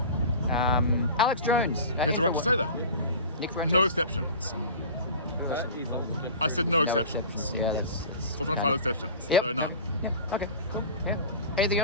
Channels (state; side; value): inverted; both; correlation -0.36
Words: Alex Jones. He has a right to say that. No exceptions. I said no exceptions. Yeah, that's So I'm trying to find exceptions. Yep. No, none. Yeah, okay. Yeah. Anything